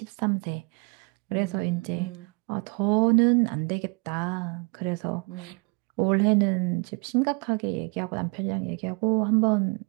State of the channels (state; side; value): quieter; left; 32.8 dB